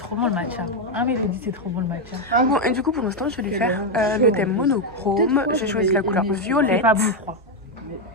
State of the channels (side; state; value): both; normal; correlation 0.04